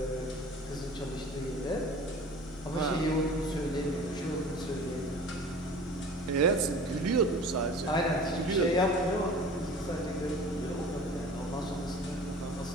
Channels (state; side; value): normal; both; correlation 0.42